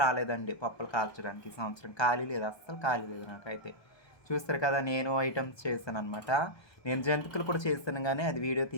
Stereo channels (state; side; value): late; right; 1.2 ms